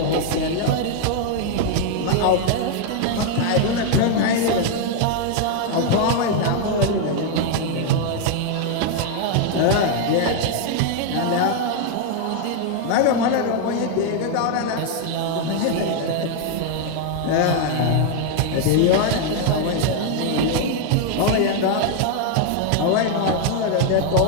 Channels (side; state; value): both; different; correlation 0.00